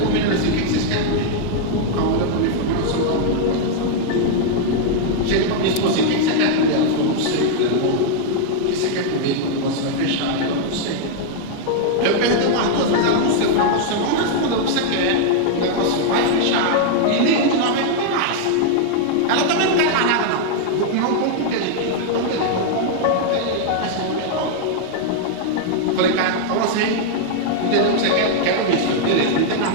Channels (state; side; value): different; both; correlation -0.01